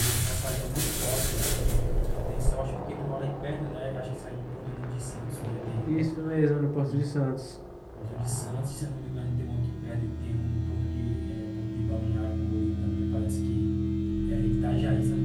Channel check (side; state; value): both; identical; correlation 1.00